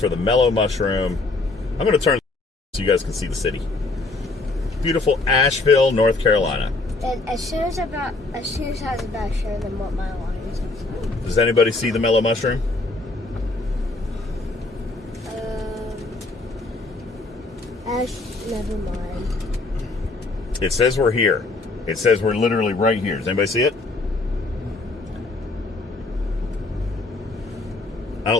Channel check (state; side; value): quieter; right; 3.3 dB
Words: the mellow mushroom. I'm going to turn so you guys can see the city. Beautiful Asheville, North Carolina. And as soon as I was about to show them what my alliance is. Does anybody see the mellow mushroom? Never mind. It says we're here. It says we're literally right here. Does anybody see it? I